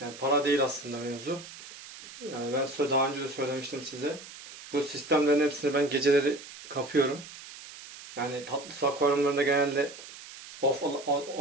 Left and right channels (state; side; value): noise; right; hiss, 15 dB below the sound